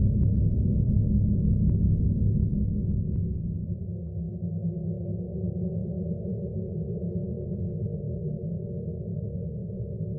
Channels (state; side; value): identical; both; correlation 1.00